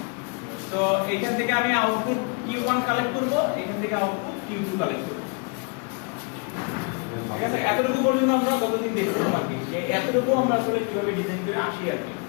তো এখান থেকে আমি আউটপুট Q1 কালেক্ট করব, এখান থেকে আউটপুট Q2 কালেক্ট করব। ঠিক আছে, এতটুকু পর্যন্ত আমরা গতদিন দেখছিলাম আর কি, যে এতটুকু আমরা আসলে কিভাবে ডিজাইন করে আসি আর কি।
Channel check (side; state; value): right; quieter; 34.3 dB